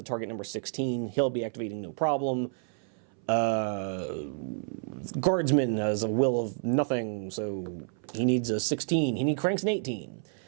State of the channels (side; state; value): left; silent; 58 dB below the other